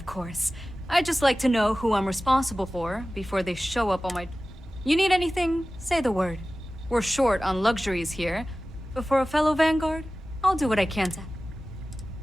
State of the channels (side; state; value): both; normal; correlation 0.96